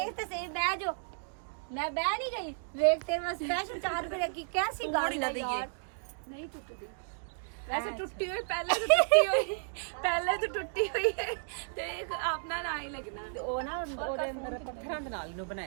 ਤੇ ਸਹੀ ਬਹਿ ਜਾਓ ਮੈਂ ਬਹਿ ਨਹੀਂ ਗਈ ਵੇਖ ਤੇਰੇ ਵਾਸਤੇ ਸਪੈਸ਼ਲ 4 ਰੁਪਏ ਰੱਖੀ कैसी गाड़ी ना दइए नहीं टूटती वैसे टूटी हुई पहले तो टूटी हुई है तो एक अपना ना ही लगना ਤੇ ਉਹ ਨਾ ਉਹਦੇ ਅੰਦਰ ਪੱਥਰਾਂ ਦੇ ਨਾਲ ਇਹਨੂੰ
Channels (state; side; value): silent; left; digital silence